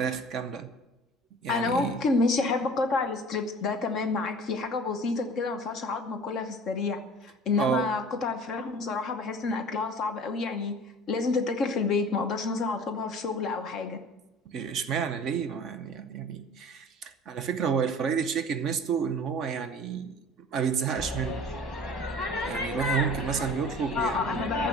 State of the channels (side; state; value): both; normal; correlation 0.43